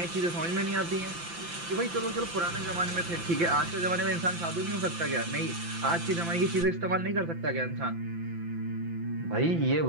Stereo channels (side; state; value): left; late; 5.9 ms